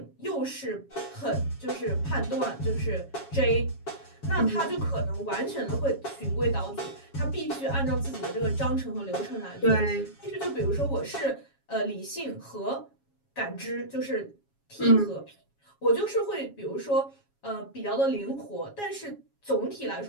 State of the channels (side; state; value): right; late; 7.3 ms